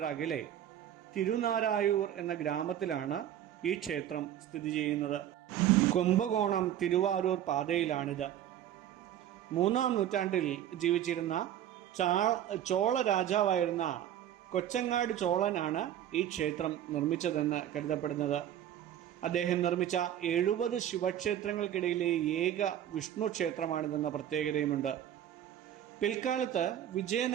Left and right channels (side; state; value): left; quieter; 11.1 dB